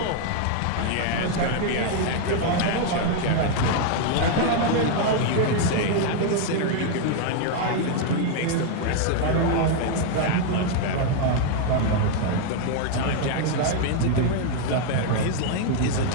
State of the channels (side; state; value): both; different; correlation 0.00